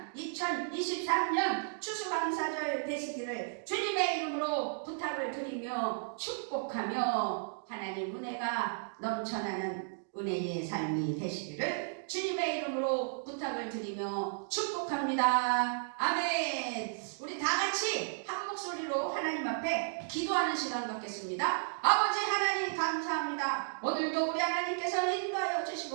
2023년 추수감사절 되시기를 주님의 이름으로 부탁을 드리며 축복하며 하나님 은혜가 넘쳐나는 은혜의 삶이 되시기를 주님의 이름으로 부탁을 드리며 축복합니다. 아멘. 우리 다 같이 한 목소리로 하나님 앞에 기도하는 시간 갖겠습니다. 아버지 하나님 감사합니다. 오늘도 우리 하나님께서 인도하여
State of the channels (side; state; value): left; silent; digital silence